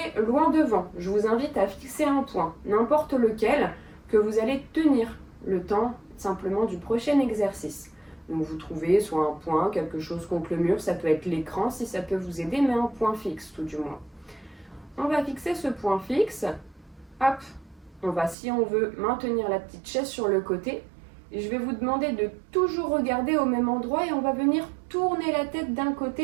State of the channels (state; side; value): drops out; left; at 18.4 s